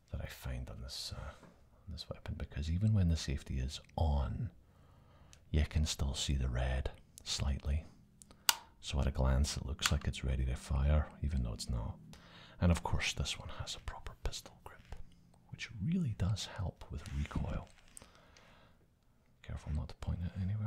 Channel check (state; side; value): identical; both; correlation 1.00